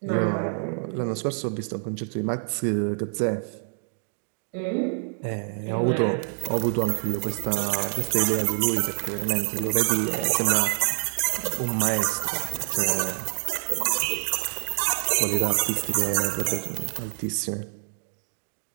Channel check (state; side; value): silent; left; digital silence